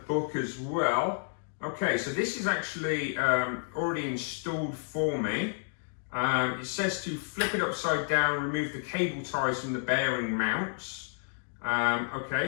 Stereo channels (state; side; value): silent; right; digital silence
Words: as well. Okay, so this is actually already installed for me. It says to flip it upside down, remove the cable ties from the bearing mounts. Okay,